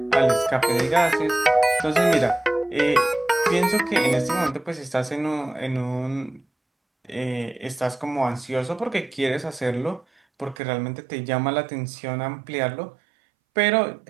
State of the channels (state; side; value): drops out; left; at 10.6 s